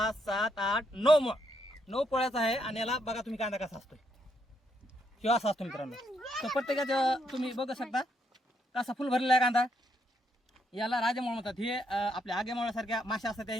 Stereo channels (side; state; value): both; normal; correlation 0.76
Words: 7 8 9 पोळ्याचा आहे. आणि याला बघा तुम्ही कांदा कसा असतोय, किंवा असा असतो मित्रांनो. तर प्रत्येकाचं तुम्ही बघू शकता कसा फुल भरलेला आहे कांदा. याला राजेमोळ म्हणतात. हे आपल्या आगेमोळ्यासारख्या माश्या असतात